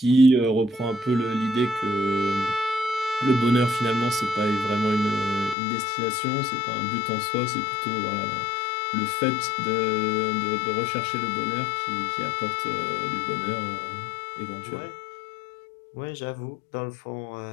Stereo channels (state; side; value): drops out; right; at 5.6 s